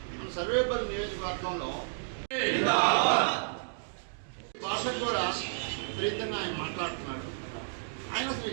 మన సర్వేపల్లి నియోజకవర్గంలో భాషకు కూడా విపరీతంగా ఆయన మాట్లాడుతున్నాడు. ఆయన అసలు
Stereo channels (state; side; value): silent; left; digital silence